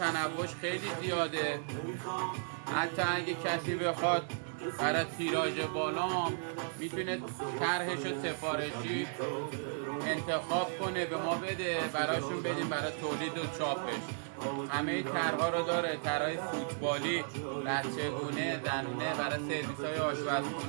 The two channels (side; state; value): left; silent; 55 dB below the other